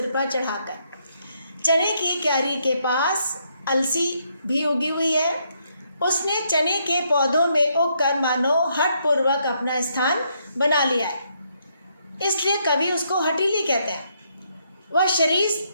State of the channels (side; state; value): both; inverted; correlation -0.74